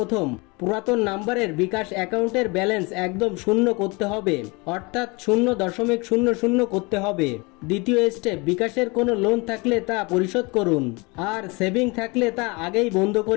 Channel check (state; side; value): quieter; right; 27.1 dB